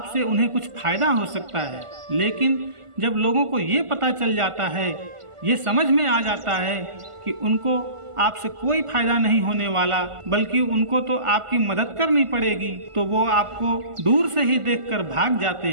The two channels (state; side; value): late; left; 1.5 ms